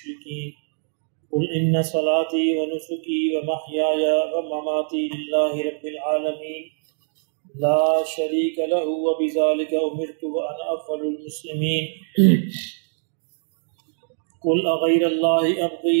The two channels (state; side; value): silent; left; digital silence